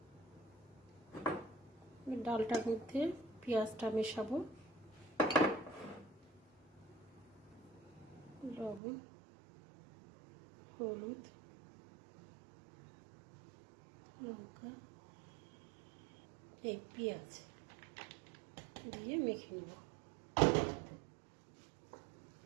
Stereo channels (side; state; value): left; drops out; at 8.8 s